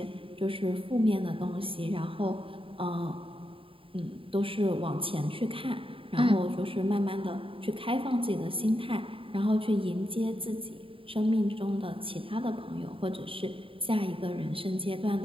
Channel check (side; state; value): left; late; 0.26 ms